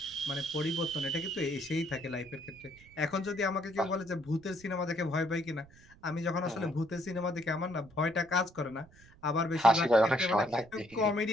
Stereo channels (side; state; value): right; noise; rumble, 24 dB below the sound